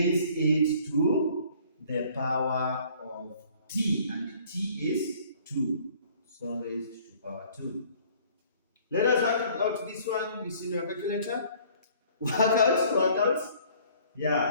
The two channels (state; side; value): inverted; both; correlation -0.56